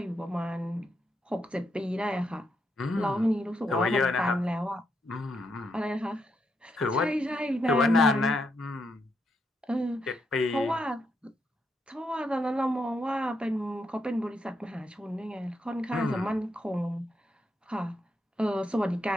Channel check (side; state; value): both; normal; correlation 0.80